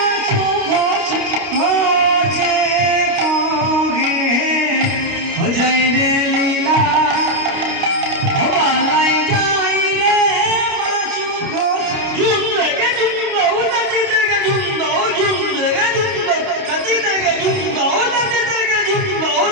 घोष घोषे कहे हो जाए रे लीला, हो बालाई जाए रे बासु घोष झुम देगे झुम दो धरती देगे झुम दो झुम देगे झुम दो धरती देगे झुम दो धरती देगे झुम दो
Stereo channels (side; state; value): left; late; 29 ms